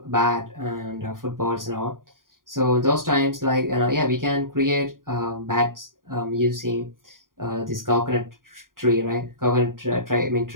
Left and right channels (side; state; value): left; late; 0.91 ms